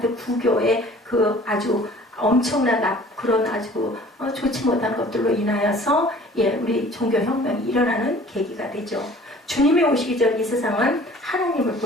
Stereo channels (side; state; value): both; normal; correlation 0.49